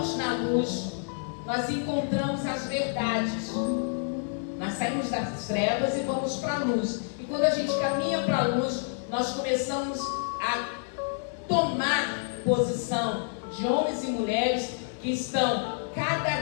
na luz, nós encontramos as verdades. Nós saímos das trevas e vamos para a luz. E quando a gente caminha para a luz, nós começamos a tomar posição de homens e mulheres que estão cada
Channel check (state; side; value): silent; right; 59 dB below the other